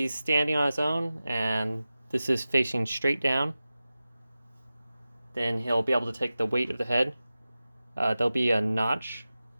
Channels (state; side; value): inverted; both; correlation -0.95